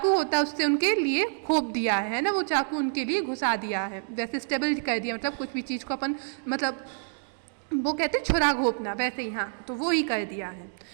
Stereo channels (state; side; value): silent; left; digital silence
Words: होता है उससे उनके लिए खोप दिया है ना, वो चाकू उनके लिए घुसा दिया है, जैसे स्टेबल कर दिया, मतलब कुछ भी चीज़ को अपन, मतलब वो कहते हैं छुरा घोपना, वैसे ही. हाँ, तो वो ही कर दिया है.